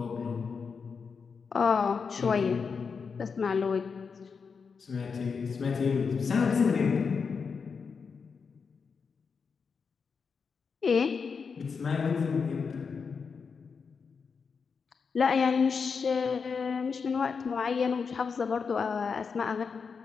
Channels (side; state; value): right; quieter; 5.6 dB